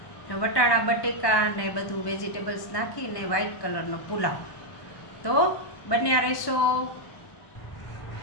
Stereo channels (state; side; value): late; right; 1.0 ms